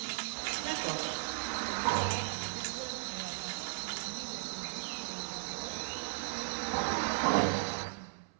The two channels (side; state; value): left; silent; 54 dB below the other